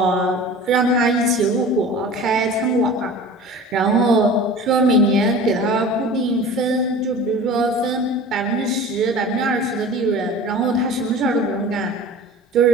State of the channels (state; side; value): normal; both; correlation 0.39